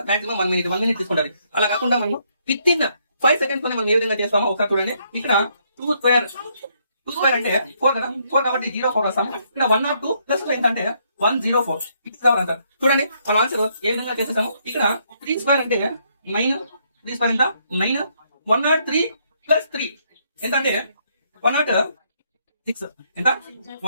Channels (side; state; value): both; inverted; correlation -0.72